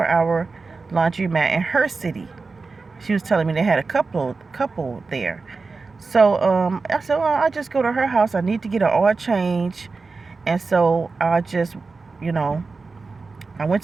laundromat in her city. She was telling me they had a couple there. So I said, well, I'll just go to her house. I need to get an oil change. And so I just, I went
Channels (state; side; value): quieter; left; 4.2 dB